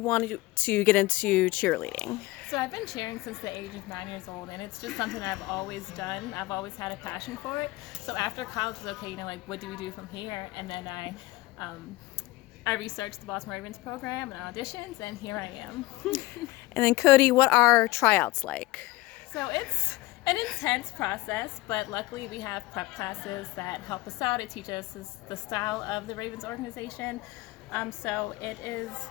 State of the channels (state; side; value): quieter; right; 19.4 dB